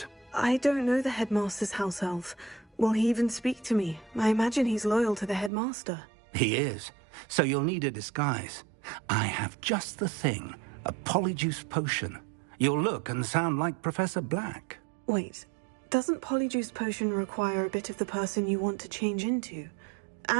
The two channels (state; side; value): drops out; left; at 5.5 s